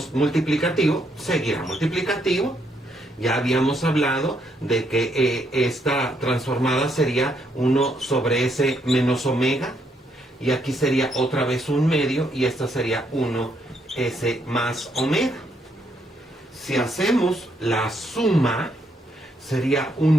multiplicativo seguirá multiplicativo. Ya habíamos hablado de que esta transformada sería 1 sobre s menos omega, y aquí sería otra vez un medio, y esta sería 1s más omega. Si hacemos la suma, sería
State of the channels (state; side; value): normal; both; correlation 0.74